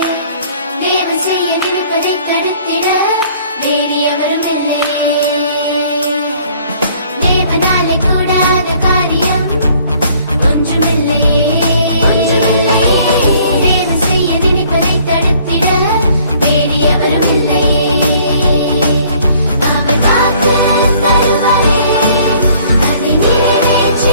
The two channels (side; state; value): both; inverted; correlation -0.58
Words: தேவன் செய்ய நினைப்பதை தடுத்திட வேறு எவரும் இல்லையே. தேவனாலே கூடாத காரியம் ஒன்றுமில்லையே. தேவன் செய்ய நினைப்பதை தடுத்திட வேறு எவரும் இல்லையே. அவர் வாக்கு தருவாரே, அதை